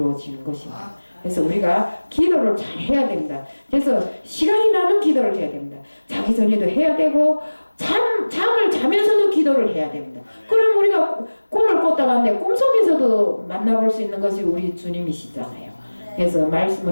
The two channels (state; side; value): inverted; both; correlation -1.00